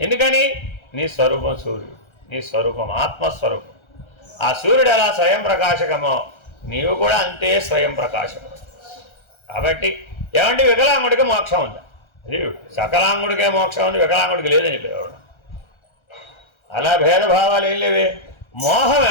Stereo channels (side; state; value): right; late; 1.3 ms